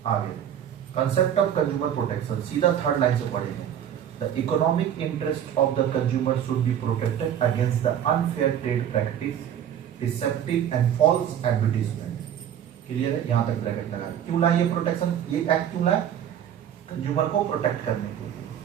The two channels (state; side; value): quieter; left; 9.8 dB